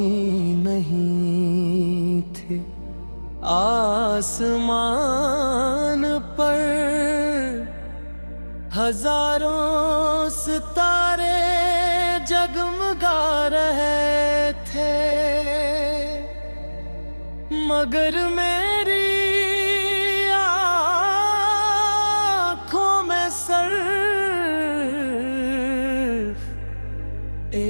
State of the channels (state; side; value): inverted; both; correlation -1.00